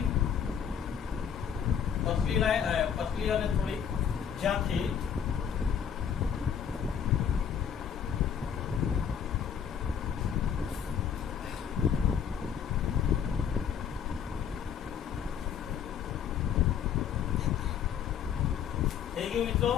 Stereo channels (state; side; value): quieter; right; 7.9 dB